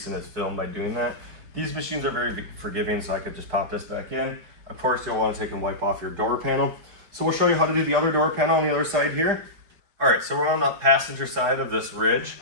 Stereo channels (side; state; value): left; late; 5.1 ms